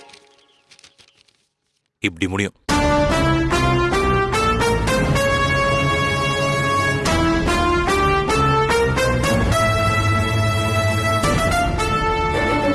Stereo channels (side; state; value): both; identical; correlation 1.00